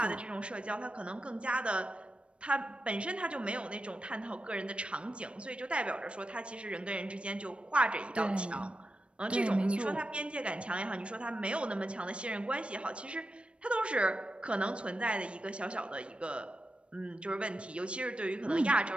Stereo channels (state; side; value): late; left; 0.059 ms